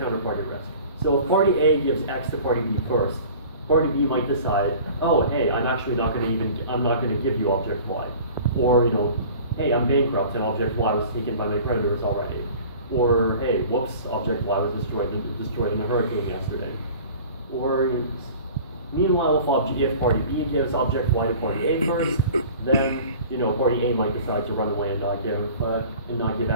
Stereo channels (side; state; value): both; inverted; correlation -0.44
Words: risk. So if party A gives X to party B first, party B might decide, oh, hey, I'm not going to give you object Y. Or, hey, I'm bankrupt and object Y was taken by my creditors already. Or, hey, whoops, object Y was destroyed in a hurricane yesterday. Or, meanwhile, if party B gives object Y to party A first, then party A might decide to run away and not give